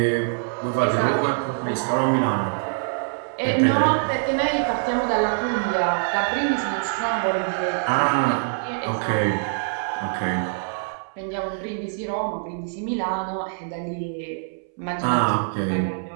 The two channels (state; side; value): silent; left; 62 dB below the other